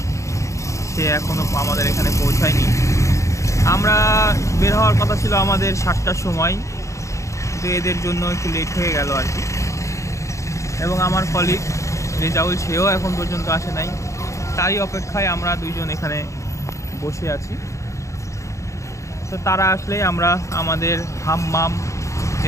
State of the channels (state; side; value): late; right; 0.15 ms